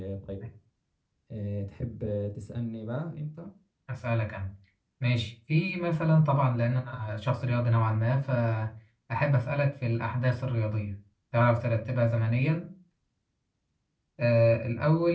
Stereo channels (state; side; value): identical; both; correlation 1.00